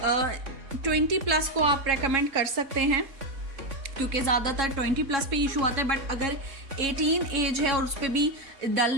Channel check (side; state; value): left; late; 3.7 ms